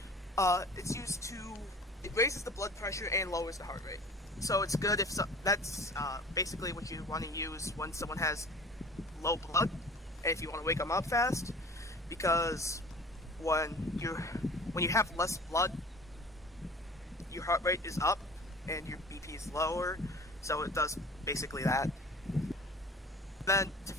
It's used to, it raises the blood pressure and lowers the heart rate. So it's good if that's basically what you want to use when someone has low blood, and if you want to wake them up fast, because when you have less blood, your heart rate is up and your BP is lower, so it does basically that. Then to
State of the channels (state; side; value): normal; both; correlation 0.43